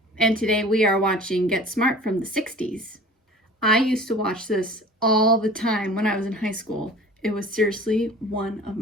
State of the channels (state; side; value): normal; both; correlation 0.43